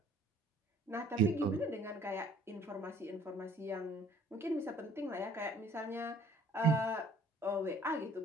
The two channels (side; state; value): both; normal; correlation 0.55